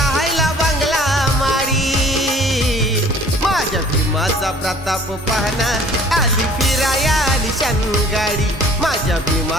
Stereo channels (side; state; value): both; normal; correlation 0.52